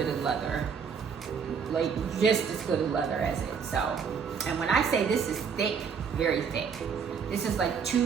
as leather. Like just as good as leather as it. So, and when I say this is thick, very thick. This is like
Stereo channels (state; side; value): quieter; left; 6.5 dB